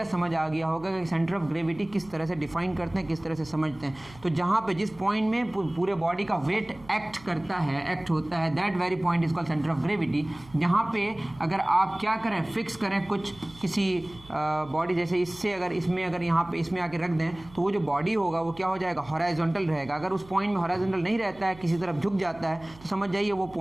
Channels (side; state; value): right; noise; hum, 22 dB below the sound